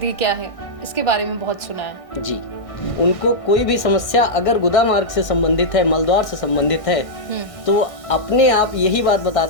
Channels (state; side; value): late; right; 1.6 ms